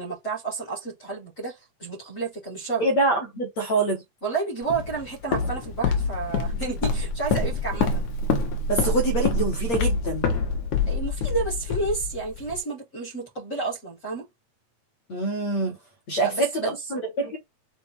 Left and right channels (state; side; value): late; right; 8.6 ms